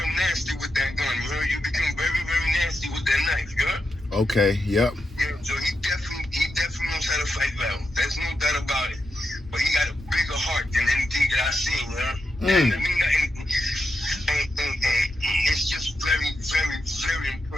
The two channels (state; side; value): normal; both; correlation 0.86